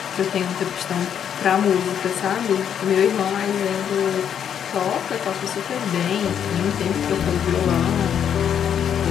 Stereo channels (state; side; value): quieter; right; 8.7 dB